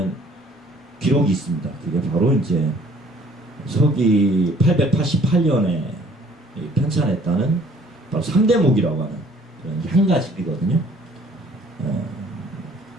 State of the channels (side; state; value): both; normal; correlation 0.57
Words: 기록이 있습니다. 그게 바로 이제 서기 888년에 편찬했다는 바로 삼대목이라고 하는 그런 향가집이거든요.